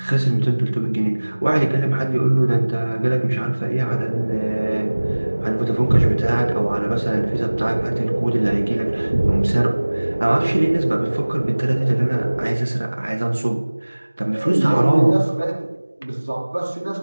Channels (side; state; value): both; inverted; correlation -1.00